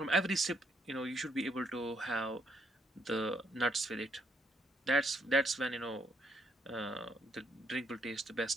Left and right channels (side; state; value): both; normal; correlation 0.72